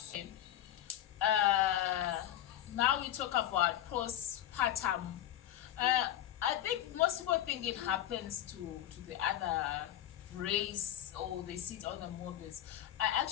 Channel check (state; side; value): quieter; right; 12.3 dB